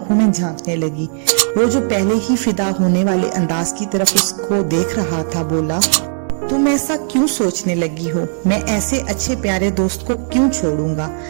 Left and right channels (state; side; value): silent; left; digital silence